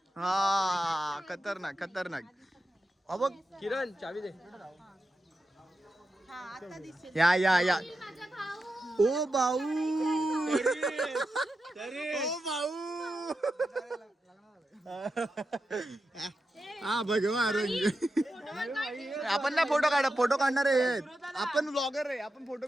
हा खतरनाक खतरनाक बघ किरण चावी दे या ओ भाऊ ओ भाऊ हा भगवा रंग आपण ना फोटो काढणार आहे आपण ब्लॉगर आहे आपण फोटो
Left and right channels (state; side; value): normal; both; correlation 0.89